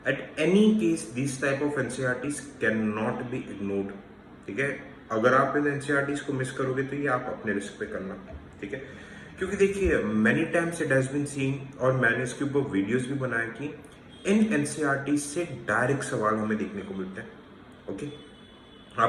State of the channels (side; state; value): both; identical; correlation 1.00